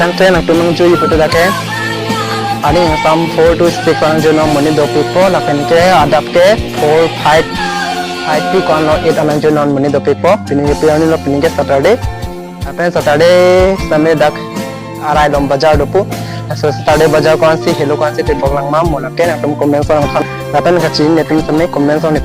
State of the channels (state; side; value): identical; both; correlation 1.00